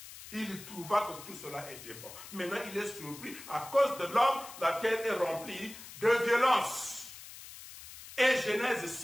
Il trouva que tout cela était bon. Maintenant, il est surpris. À cause de l'homme, la terre est remplie de violence. Et Genèse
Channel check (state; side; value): noise; left; hiss, 15 dB below the sound